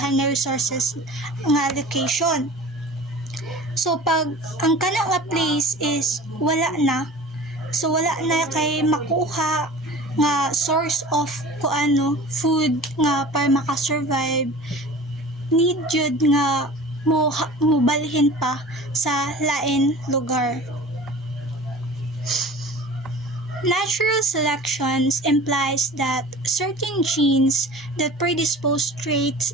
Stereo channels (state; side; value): normal; both; correlation 0.40